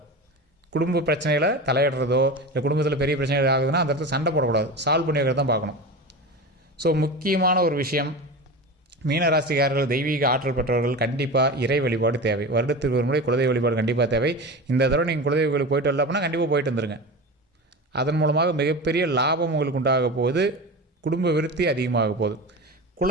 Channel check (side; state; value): both; normal; correlation 0.28